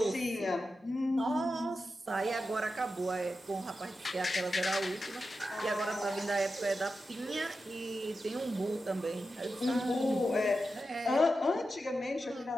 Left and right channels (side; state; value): both; normal; correlation 0.90